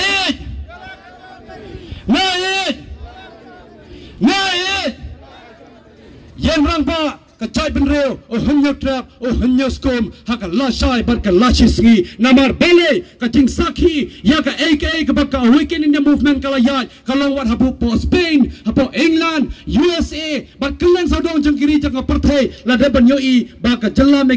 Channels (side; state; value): both; identical; correlation 1.00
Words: Yang Rangbah kacai benreu o hanyo trap o hanyo skom haka lashai bar ka lashisngi namar bele ka jing sakhi ya ka aka ka baka Awaken India movement kala yai kalau wat hapo po Spain hapo England USA bar kelang saudong jangkiri jang perthai la de ban yoi ba ka jalla